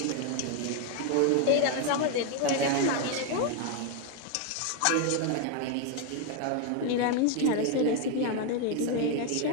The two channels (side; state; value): both; different; correlation 0.01